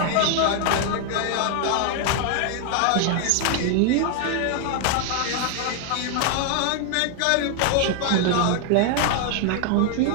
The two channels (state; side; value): different; both; correlation 0.00